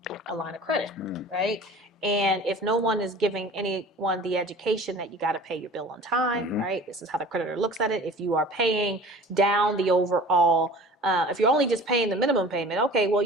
line of credit, right? And if no one is giving anyone the education that you got to pay your bill on time, right? This is how the creditor looks at it. If you are paying down the overall, if you're only just paying the minimum payment, okay, well,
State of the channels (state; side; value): normal; both; correlation 0.43